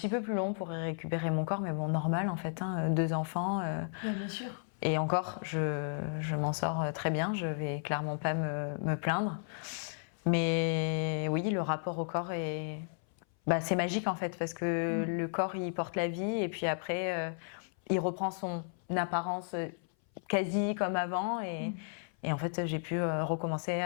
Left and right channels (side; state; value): right; silent; 55 dB below the other